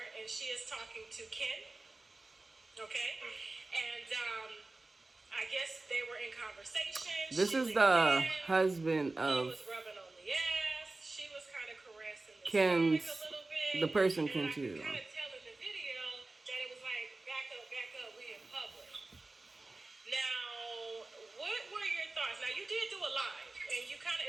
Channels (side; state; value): left; quieter; 3.1 dB